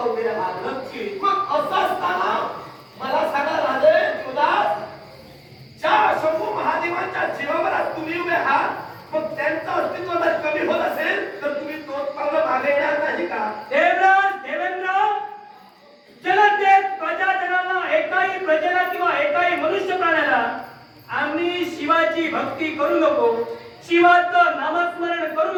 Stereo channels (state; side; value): identical; both; correlation 1.00